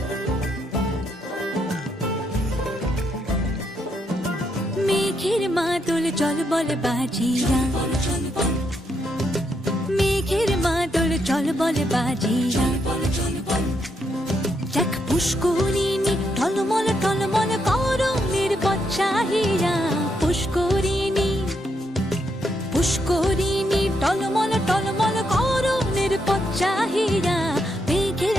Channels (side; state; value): both; normal; correlation 0.78